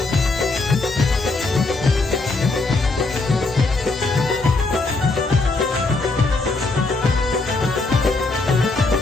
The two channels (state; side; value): quieter; right; 3.4 dB